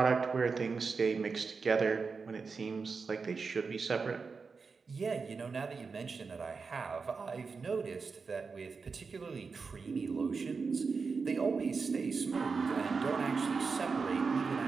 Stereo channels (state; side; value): quieter; left; 4.9 dB